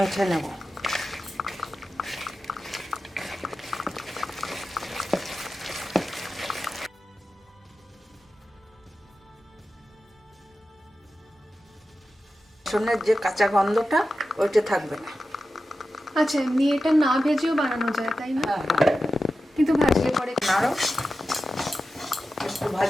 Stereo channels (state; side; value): normal; both; correlation 0.92